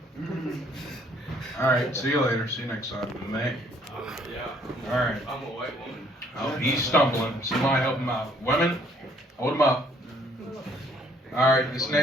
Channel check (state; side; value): normal; both; correlation 0.63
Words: All right. See you later. See you next time. May. Yeah. All right. I'm a white woman. Oh, he's stumbling. Somebody help him out. Women, hold him up. All right. This